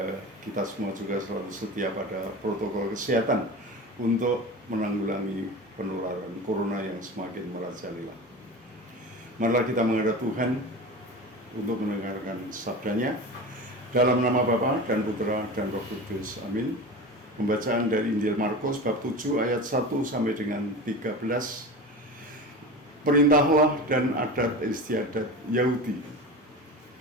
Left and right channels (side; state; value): both; normal; correlation 0.30